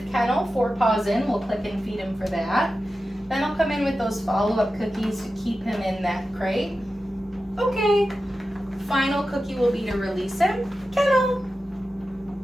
kennel, 4 paws in, we'll click and feed him for that. Then I'll come in with those follow-up cookies to keep him in that crate. Okay, final cookie will be to release him, kennel.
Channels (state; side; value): normal; both; correlation 0.93